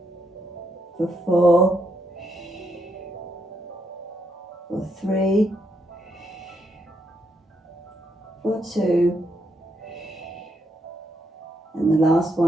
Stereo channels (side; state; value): both; normal; correlation 0.78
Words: for 4, for 3, for 2, and the last